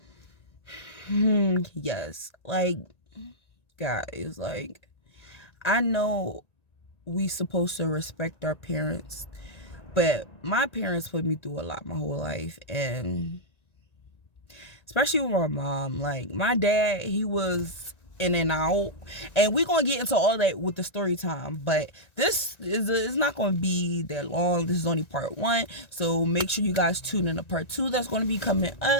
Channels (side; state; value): right; late; 1.9 ms